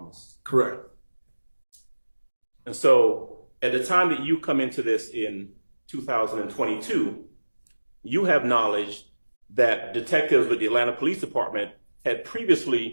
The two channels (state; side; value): inverted; both; correlation -1.00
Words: Correct. And so at the time that you come into this in 2022, you have knowledge that detectives with the Atlanta Police Department had